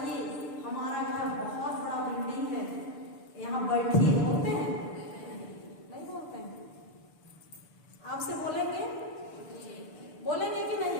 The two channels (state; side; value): late; right; 6.8 ms